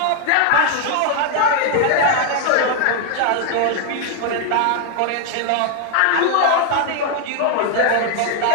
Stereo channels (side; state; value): both; different; correlation 0.00